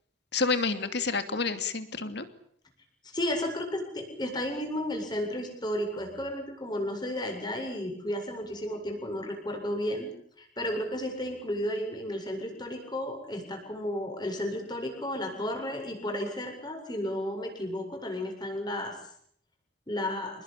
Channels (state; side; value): normal; both; correlation 0.44